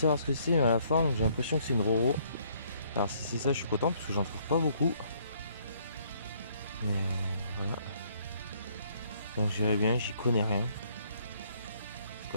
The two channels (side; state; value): both; inverted; correlation -0.65